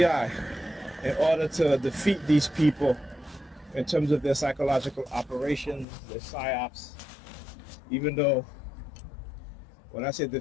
in order to defeat these people in terms of their psychological operations, their psyops, even though when I say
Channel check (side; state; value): right; drops out; at 5.9 s